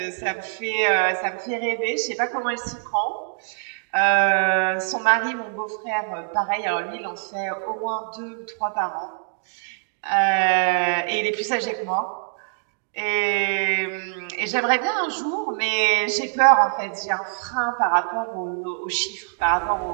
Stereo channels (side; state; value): left; silent; digital silence